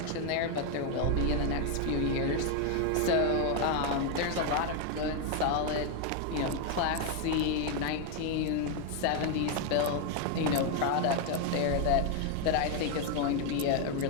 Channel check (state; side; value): different; both; correlation 0.01